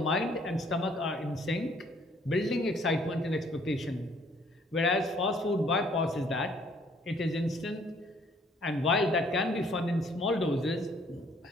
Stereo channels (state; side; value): normal; both; correlation 0.62